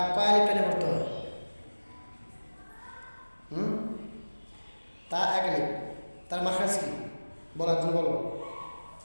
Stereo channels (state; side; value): inverted; both; correlation -1.00